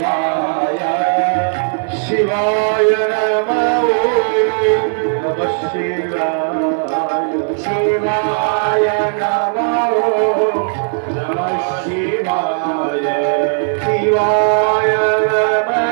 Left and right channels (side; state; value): left; silent; digital silence